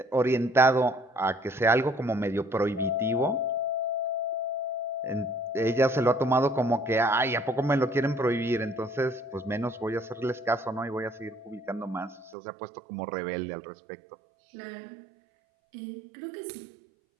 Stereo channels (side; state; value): left; drops out; at 12.4 s